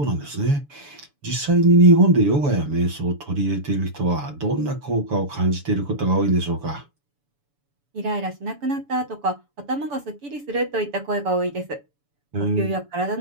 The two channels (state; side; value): late; left; 7.0 ms